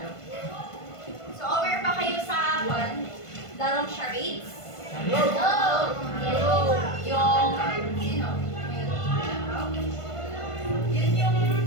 aware ba kayo sa larong charades? Yung, yun yung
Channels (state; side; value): late; right; 1.5 ms